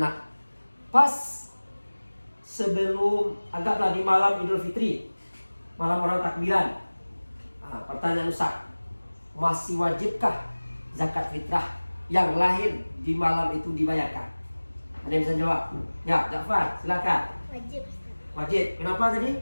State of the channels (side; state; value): both; inverted; correlation -1.00